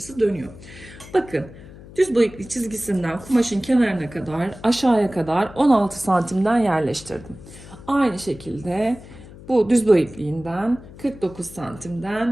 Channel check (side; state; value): left; noise; hum, 18 dB below the sound